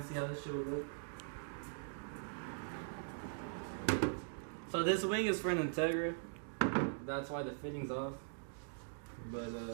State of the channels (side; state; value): left; silent; digital silence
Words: see how this shit will look. So this wing is for an Integra. That's why the fitting's off. But